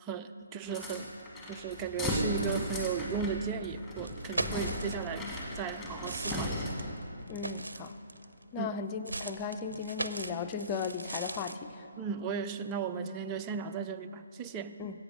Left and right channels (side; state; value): both; inverted; correlation -0.35